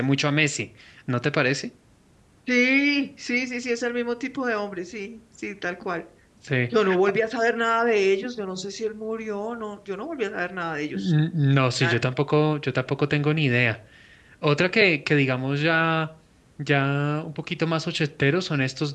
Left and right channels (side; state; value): both; identical; correlation 1.00